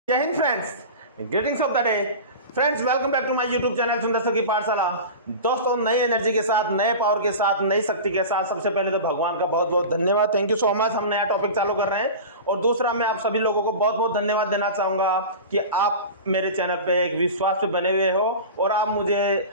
जय हिंद friends, greetings of the day friends. Welcome back to my YouTube channel Sundar sir की पाठशाला। दोस्तों, नई एनर्जी के साथ, नए पावर के साथ, नई शक्ति के साथ सबसे पहले तो भगवान का बहुत बहुत धन्यवाद, थैंक यू सो मच। हम नया टॉपिक चालू कर रहे हैं और दूसरा मैं आप सभी लोगों को बहुत बहुत धन्यवाद देना चाहूंगा कि आप मेरे चैनल पे एक विश्वास पे बने हुए हो और आप मुझे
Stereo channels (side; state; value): both; inverted; correlation -0.31